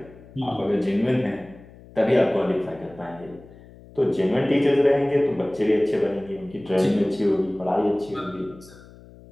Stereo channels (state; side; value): noise; left; hum, 21 dB below the sound